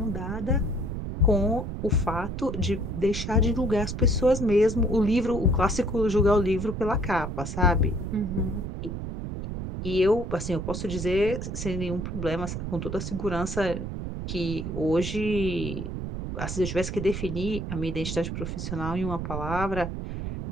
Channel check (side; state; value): right; noise; rumble, 5 dB below the sound